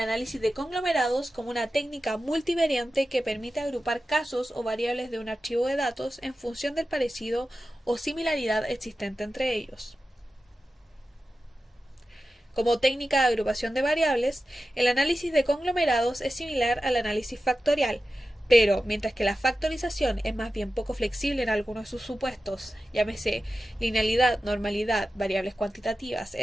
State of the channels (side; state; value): both; normal; correlation 0.93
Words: de conglomerados como una técnica multivariante que permite agrupar casos o variables de un archivo de datos en función del parecido o similaridad existente entre ellos. Como técnica de agrupación de variables, el análisis de conglomerados es similar al análisis factorial, pero mientras que la factorización es más bien poco flexible en algunos de sus supuestos, llámese linealidad, normalidad, variables cuantitativas,